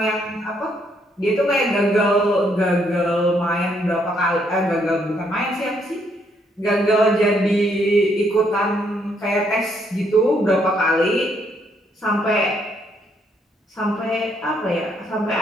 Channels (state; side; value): normal; both; correlation 0.72